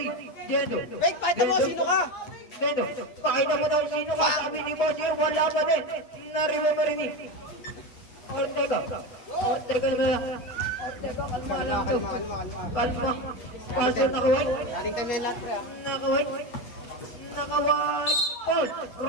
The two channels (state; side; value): late; right; 8.1 ms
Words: Dendo. Wait, pakita mo, sino ka? Dendo. Pakita mo daw sino ka. Sabi ni Boss yun. Wala pa din. Nariba pa rin ni Ortega. Ortega na. Ortega, kalma lang. Kalma. Pass na nakaway. Dating time na yung lahat, pre, ah. Nakaway. Nakaway. Paul.